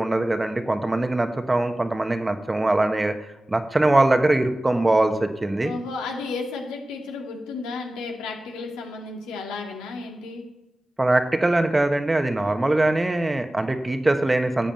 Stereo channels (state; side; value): normal; both; correlation 0.96